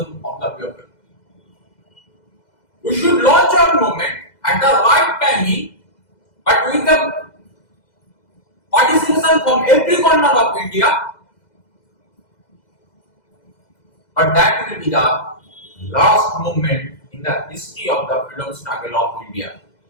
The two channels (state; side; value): late; right; 2.0 ms